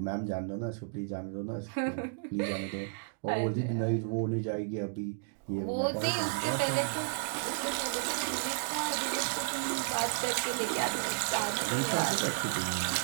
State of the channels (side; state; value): left; silent; digital silence